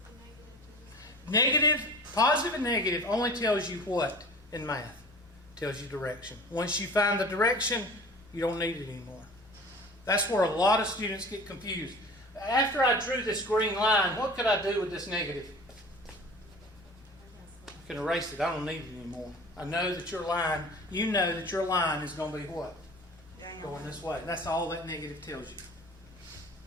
the negative to this? Negative, positive and negative only tells you what in math? Tells you direction. Once you find the direction, you don't need it anymore. That's where a lot of students get confused. After I drew this green line, what could I do with this negative? I can erase it. I don't need it anymore. I know that your line, you know that your line is going to be what? Going this way. That's all that negative tells you.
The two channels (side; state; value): both; normal; correlation 0.41